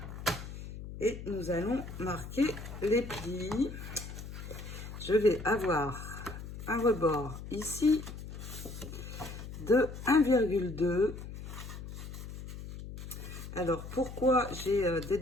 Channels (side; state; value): left; noise; hum, 10 dB below the sound